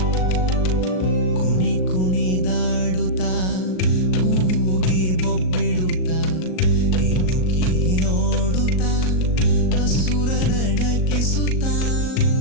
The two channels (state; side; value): late; right; 38 ms